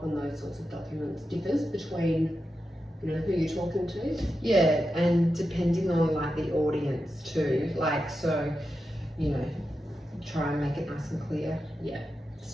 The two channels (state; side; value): normal; both; correlation 0.89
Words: on those sorts of documents, differs between who you're talking to? And depending on the audience too, so try and make it nice and clear.